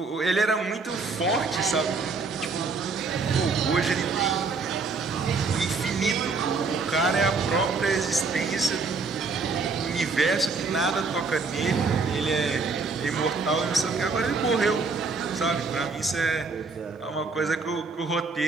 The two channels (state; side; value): quieter; left; 4.3 dB